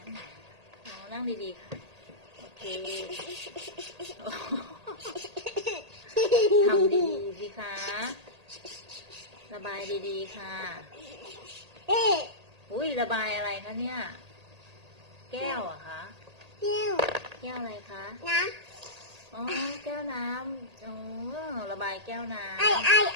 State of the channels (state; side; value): late; left; 1.8 ms